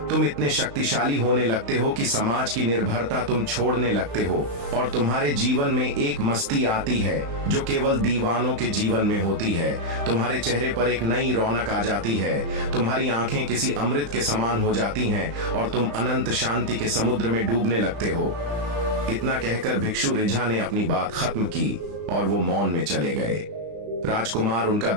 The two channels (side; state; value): left; late; 35 ms